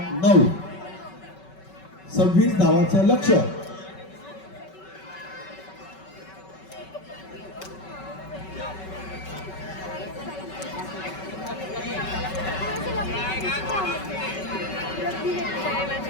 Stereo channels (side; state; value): right; late; 5.3 ms